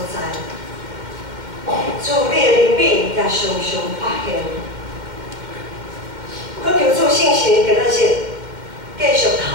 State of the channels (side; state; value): left; late; 2.1 ms